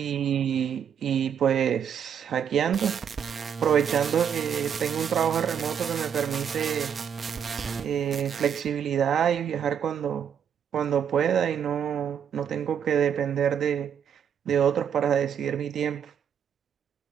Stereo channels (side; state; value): left; quieter; 8.1 dB